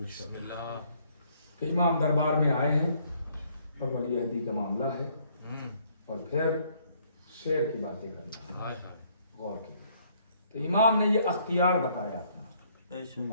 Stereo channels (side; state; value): both; inverted; correlation -0.66